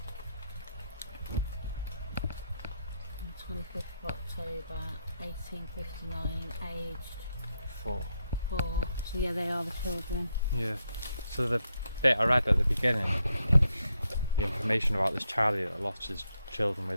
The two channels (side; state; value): both; inverted; correlation -0.81